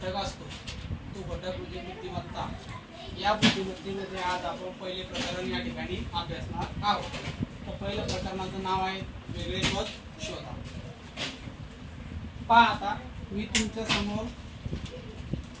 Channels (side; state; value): both; identical; correlation 1.00